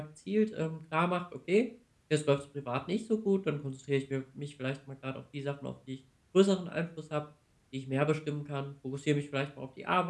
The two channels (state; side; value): identical; both; correlation 1.00